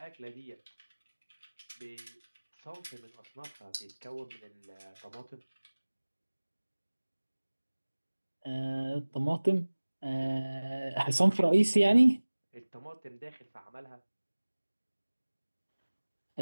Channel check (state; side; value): inverted; both; correlation -1.00